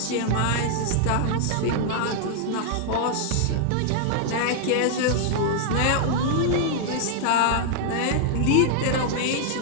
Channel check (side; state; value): both; different; correlation 0.00